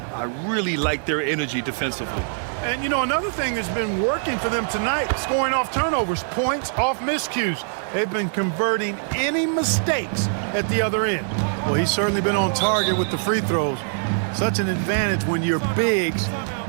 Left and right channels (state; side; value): silent; left; digital silence